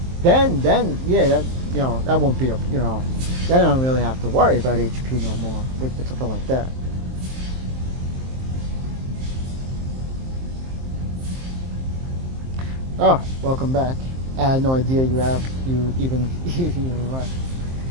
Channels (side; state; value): left; late; 23 ms